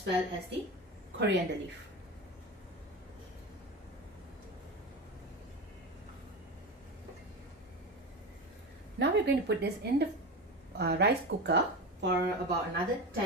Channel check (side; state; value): both; normal; correlation 0.24